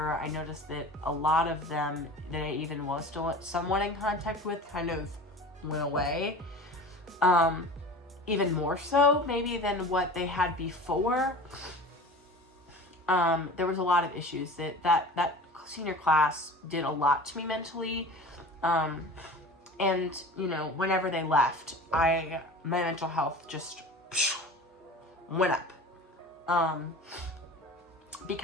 I noticed that a lot of them that I even was still somewhat in contact with kind of went away. Even more so maybe than what they had before. There was a lot of issues that senior class did a lot to me mentally. And you know, whenever they left, my mental health just went up.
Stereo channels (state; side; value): normal; both; correlation 0.37